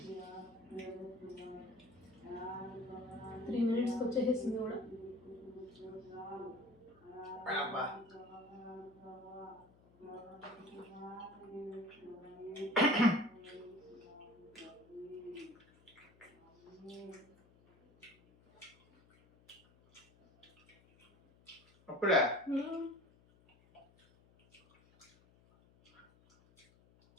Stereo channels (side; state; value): left; noise; hum, 27 dB below the sound